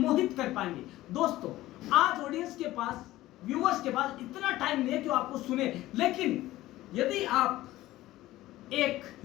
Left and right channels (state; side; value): quieter; right; 16.2 dB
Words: कर पाएंगे। दोस्तों, आज ऑडियंस के पास, व्यूअर्स के पास इतना टाइम नहीं है कि आपको सुने, लेकिन यदि आप एक